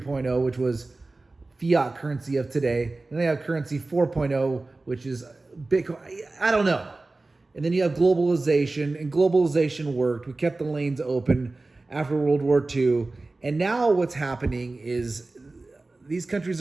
which was fiat currency of today. And they have currency 4.0, which is Bitcoin. I don't know. And then you have globalization, and globalization worked. We kept the lanes open after World War II. And now what's happening is these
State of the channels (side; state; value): left; quieter; 3.2 dB